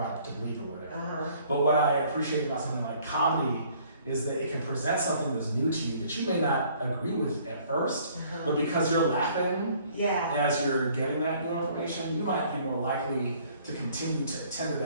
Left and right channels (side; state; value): both; inverted; correlation -0.58